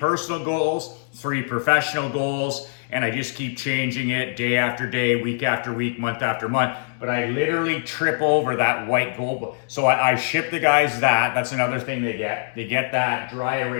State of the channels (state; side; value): silent; right; digital silence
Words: goals 3 professional goals, and I just keep changing it day after day, week after week, month after month. But I literally trip over that white goal book. So I ship the guys that. That's another thing they get. They get that dry